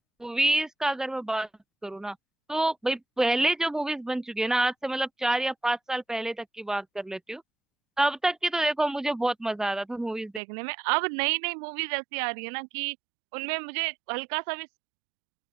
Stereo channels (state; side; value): drops out; left; at 10.4 s